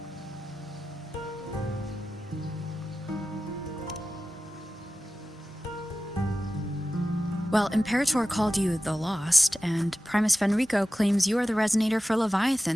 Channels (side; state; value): both; normal; correlation 0.94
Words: Well, Imperator called you the Lost, and Primus Fenrico claims you are the resonator for